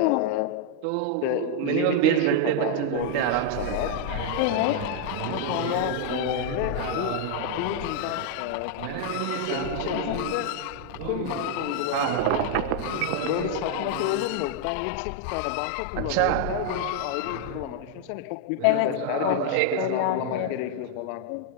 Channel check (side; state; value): both; different; correlation 0.00